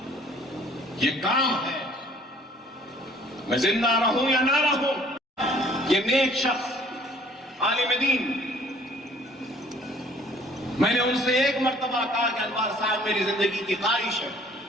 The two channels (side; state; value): both; normal; correlation 0.57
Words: یہ کام ہے، میں زندہ رہوں یا نہ رہوں. یہ نیک شخص عالم دین، میں نے ان سے ایک مرتبہ کہا کہ انوار صاحب میری زندگی کی خواہش ہے،